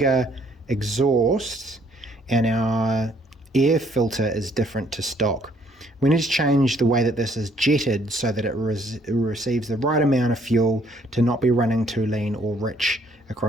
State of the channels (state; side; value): normal; both; correlation 0.65